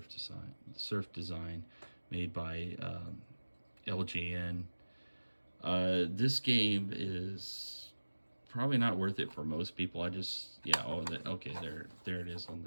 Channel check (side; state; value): both; inverted; correlation -1.00